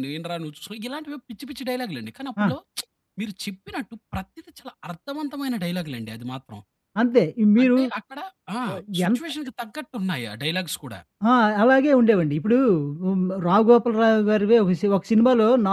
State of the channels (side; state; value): both; identical; correlation 1.00